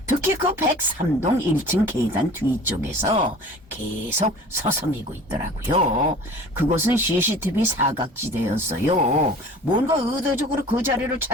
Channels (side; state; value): both; normal; correlation 0.44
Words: 특히 그 103동 1층 계단 뒤쪽에서 계속 서성이고 있더라고요. 그곳은 CCTV 사각지대였어요. 뭔가 의도적으로 그 자리를